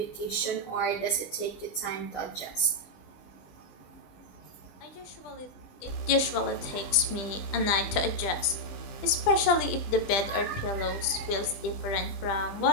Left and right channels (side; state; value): right; late; 20 ms